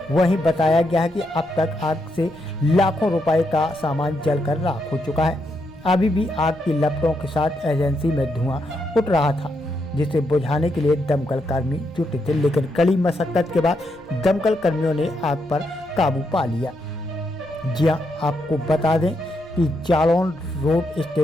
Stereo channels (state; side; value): noise; right; rumble, 27 dB below the sound